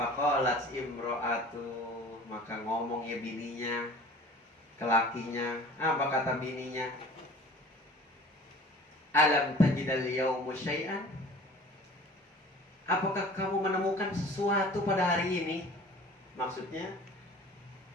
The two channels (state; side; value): normal; both; correlation 0.45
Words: imro'atu, maka ngomong ya bininya ke lakinya. Apa kata bininya? Alam tajidal yaumu syai'an? Apakah kamu menemukan sesuatu pada hari ini? Maksudnya,